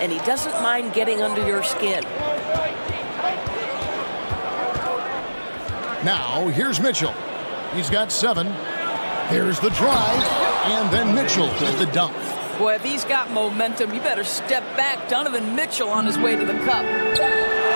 he doesn't mind getting under your skin. Now, here's Mitchell. He's got 7. Here's the drive, and then Mitchell with the dunk. Boy, if he's got momentum, you better step back. Donovan Mitchell on his way to the cup.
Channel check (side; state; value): both; inverted; correlation -1.00